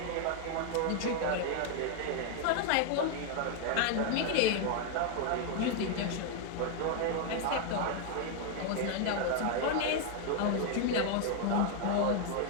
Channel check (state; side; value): different; both; correlation 0.00